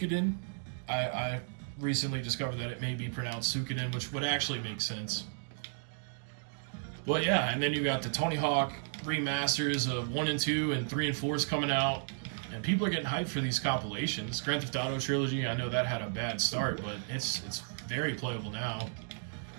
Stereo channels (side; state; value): left; silent; digital silence